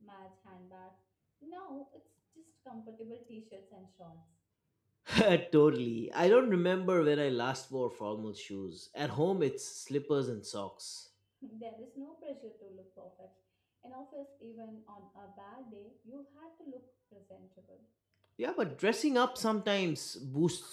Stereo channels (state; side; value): identical; both; correlation 1.00